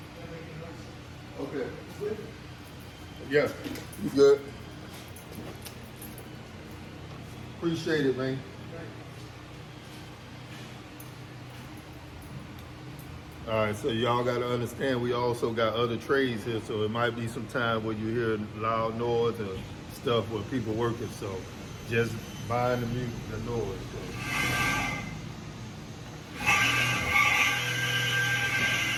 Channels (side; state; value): both; identical; correlation 1.00